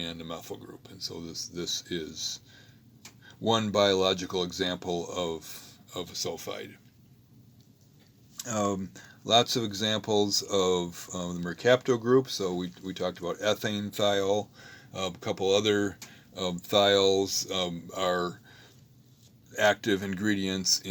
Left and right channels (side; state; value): both; identical; correlation 1.00